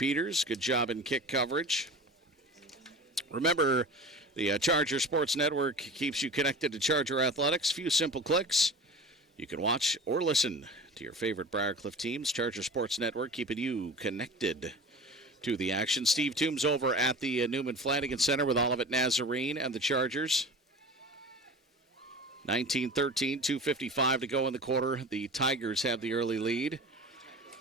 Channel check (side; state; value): both; normal; correlation 0.36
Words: Good job in kick coverage. Remember, the Charger Sports Network keeps you connected to Charger Athletics. Few simple clicks. You can watch or listen to your favorite Briar Cliff teams. Charger Sports Network keeping you connected to the action. Steve Toombs over at the Newman Flanagan Center with Olivet Nazarene and the Chargers. 19-13, 2:55 to go in the quarter. The Tigers have the early lead.